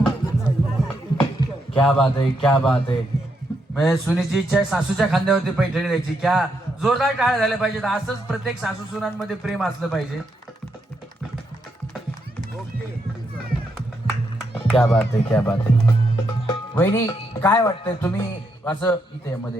क्या बात है, क्या बात है. म्हणजे सुनीची इच्छा आहे सासूच्या खांद्यावरती पैठणी द्यायची. क्या जोरदार टाळ्या झाल्या पाहिजेत. असंच प्रत्येक सासू सुनांमध्ये प्रेम असलं पाहिजे. क्या बात आहे, क्या बात आहे. वहिनी काय वाटतंय तुम्ही असं इथे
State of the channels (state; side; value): normal; both; correlation 0.79